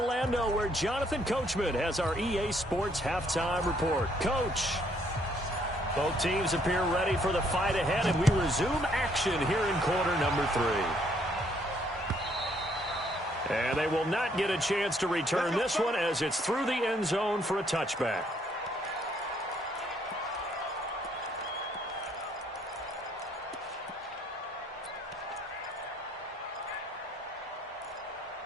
where Jonathan Coachman has our EA Sports halftime report. Coach, both teams appear ready for the fight ahead, and we resume action here in quarter number 3. And they will not get a chance to return this one as it's through the end zone for a touchback.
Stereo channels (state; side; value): normal; both; correlation 0.68